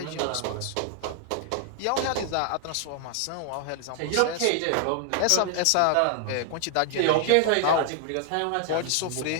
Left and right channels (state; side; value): different; both; correlation 0.00